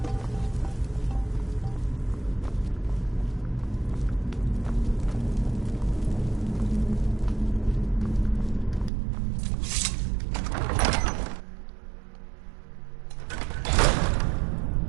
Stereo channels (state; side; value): drops out; left; at 8.9 s